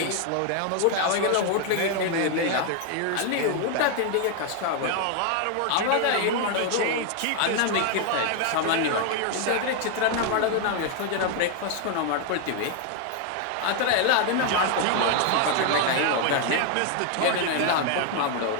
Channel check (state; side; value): different; both; correlation 0.01